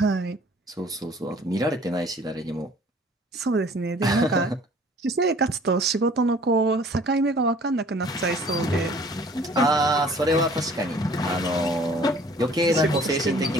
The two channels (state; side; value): normal; both; correlation 0.52